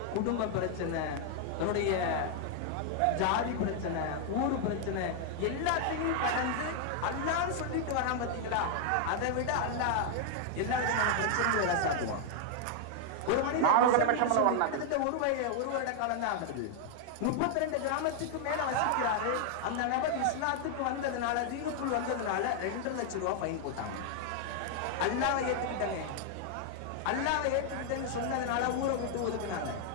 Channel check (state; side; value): different; both; correlation 0.00